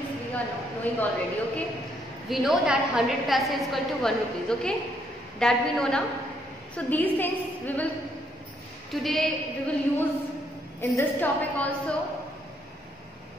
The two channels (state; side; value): normal; both; correlation 0.72